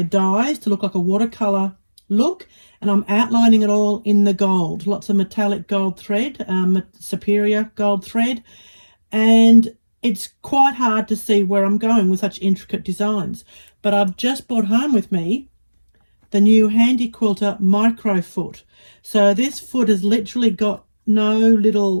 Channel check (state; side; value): inverted; both; correlation -1.00